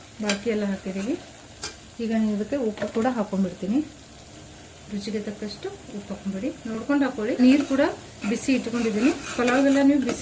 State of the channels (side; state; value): both; identical; correlation 1.00